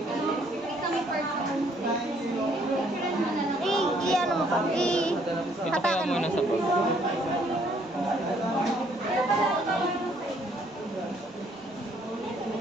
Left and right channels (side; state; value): both; normal; correlation 0.65